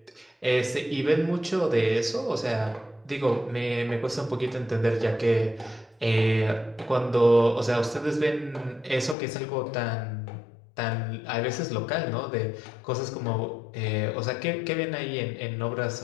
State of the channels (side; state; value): right; drops out; at 9.2 s